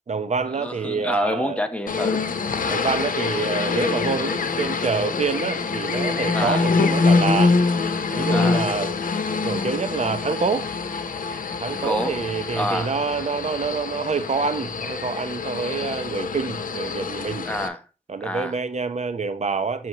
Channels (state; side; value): normal; both; correlation 0.50